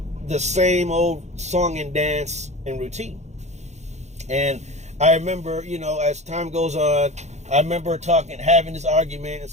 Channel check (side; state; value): left; late; 0.33 ms